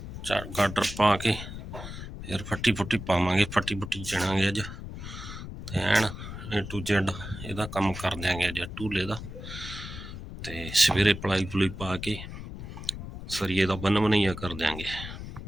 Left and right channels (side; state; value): left; noise; rumble, 10 dB below the sound